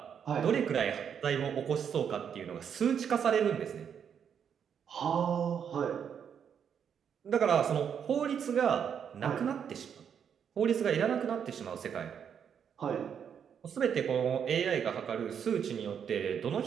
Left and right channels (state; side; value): quieter; left; 7.8 dB